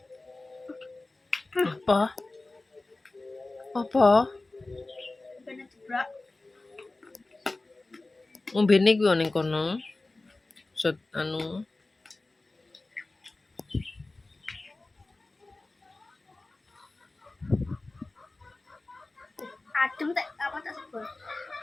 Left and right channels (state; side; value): quieter; right; 3.1 dB